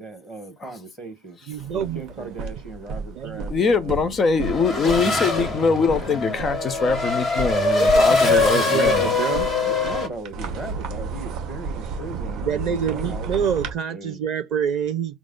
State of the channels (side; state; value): both; normal; correlation 0.58